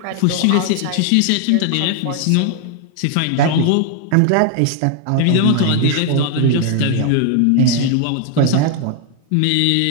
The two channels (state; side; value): different; both; correlation 0.00